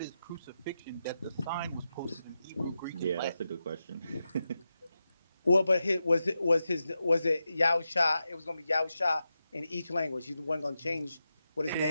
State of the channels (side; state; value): both; inverted; correlation -0.89